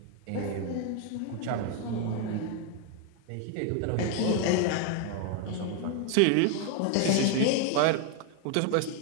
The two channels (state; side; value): different; both; correlation 0.01